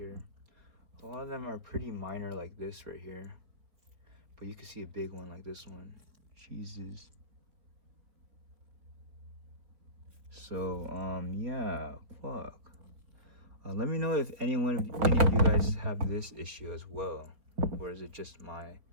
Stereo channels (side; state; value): left; late; 4.1 ms